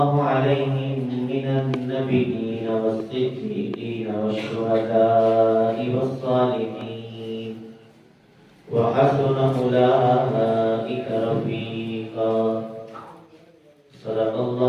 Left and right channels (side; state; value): both; identical; correlation 1.00